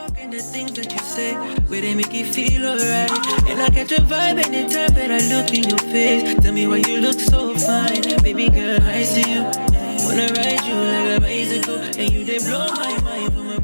The things that you say, where they make you feel alright. And I catch a vibe anytime that I look in your face. Tell me why you look so fine. Baby girl, I see you. Wanna ride you like a bicycle. And you they blow my mind from my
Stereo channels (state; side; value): inverted; both; correlation -1.00